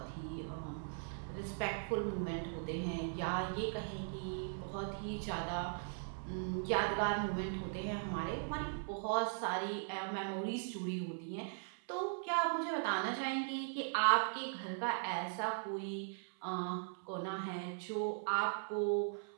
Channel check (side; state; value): left; silent; 51 dB below the other